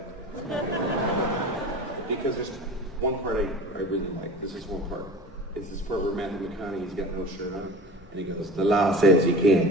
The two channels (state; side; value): normal; both; correlation 0.36